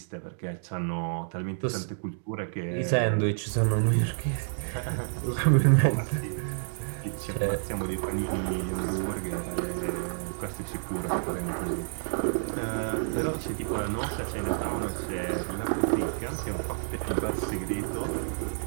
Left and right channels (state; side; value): silent; left; digital silence